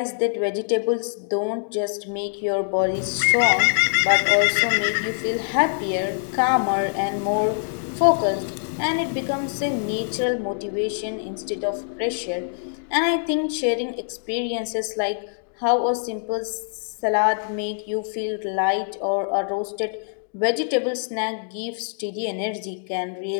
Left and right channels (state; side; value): silent; right; digital silence